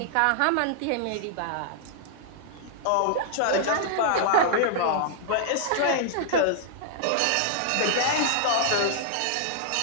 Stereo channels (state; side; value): different; both; correlation -0.01